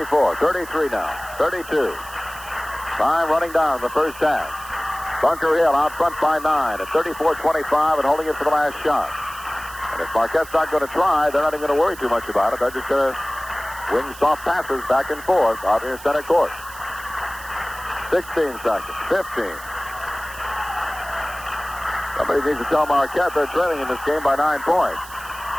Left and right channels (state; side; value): noise; right; hiss, 17 dB below the sound